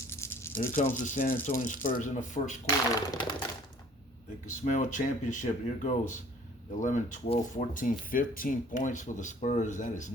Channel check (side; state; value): both; normal; correlation 0.53